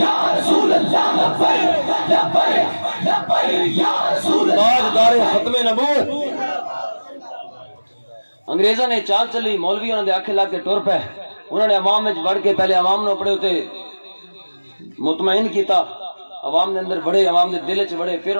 رسول اللہ، لبیک لبیک لبیک یا رسول اللہ، تاجدار ختم نبوت انگریزوں نے چال چلی، مولوی انہوں نے آکھے لا کے ٹر پے، انہوں نے عوام میں بڑھ کے پہلے عوام نے اپنے ہوتے مطمئن کیتا، عوام نے اندر بڑھے، عوام نے دل چ بڑھے، پھر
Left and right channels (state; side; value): inverted; both; correlation -1.00